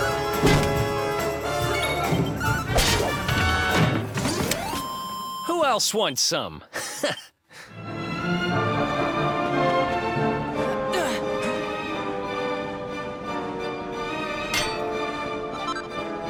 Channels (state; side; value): identical; both; correlation 1.00